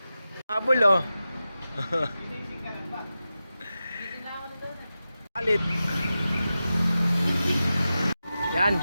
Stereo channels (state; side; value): inverted; both; correlation -0.92